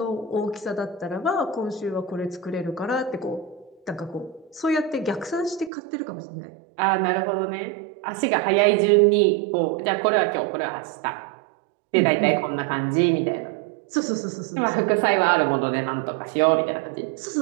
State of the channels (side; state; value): left; drops out; at 5.7 s